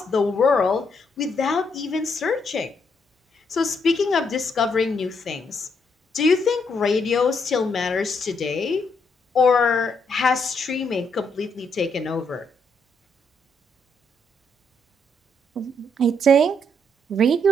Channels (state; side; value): normal; both; correlation 0.75